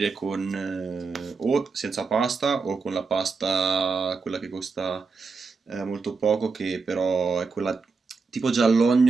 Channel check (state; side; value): quieter; left; 4.6 dB